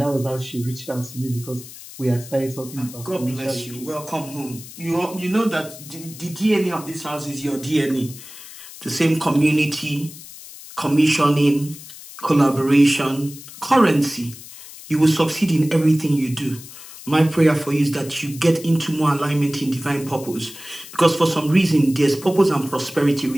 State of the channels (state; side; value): noise; left; hiss, 16 dB below the sound